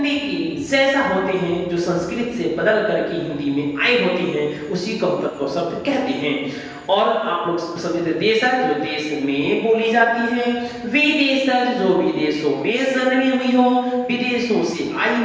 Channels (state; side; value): identical; both; correlation 1.00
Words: की जैसा होते हैं, जो संस्कृत से बदल करके हिंदी में आए होते हैं, उसी को तत्व शब्द कहते हैं। और आप लोग समझते देशज, जो देश में बोली जाती है, विदेशज, जो विदेशों में जन्मी हुई हो, विदेशों से आई